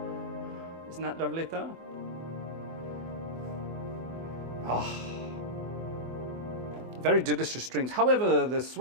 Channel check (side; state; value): left; late; 24 ms